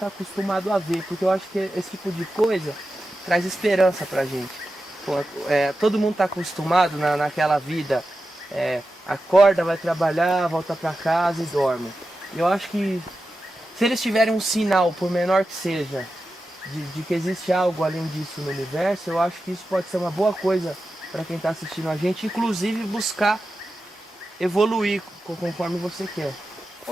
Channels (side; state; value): both; normal; correlation 0.92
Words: acostumado a ver, porque eu acho que esse tipo de coisa traz esperança pra gente. Pô, todo mundo tá acostumado naquela vida, acorda, vai trabalhar, volta pra casa e dorme. Eu acho que se eles tiverem um sinal, por menor que seja, de que existe algo além disso no universo, eu acho que isso pode ser uma boa coisa para quem está assistindo a gente, inclusive buscar evoluir conforme você quer.